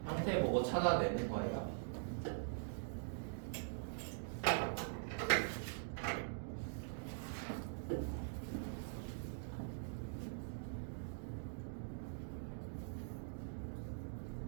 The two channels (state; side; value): silent; left; digital silence